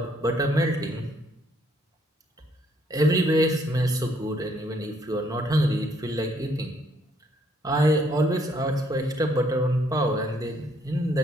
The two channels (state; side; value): normal; both; correlation 0.68